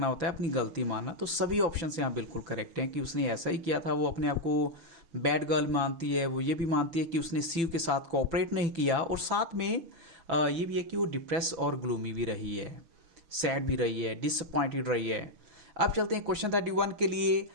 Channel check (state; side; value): late; left; 6.0 ms